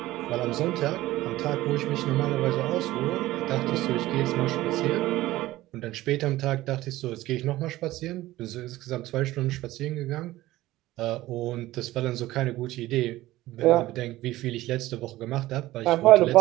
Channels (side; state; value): left; quieter; 16.7 dB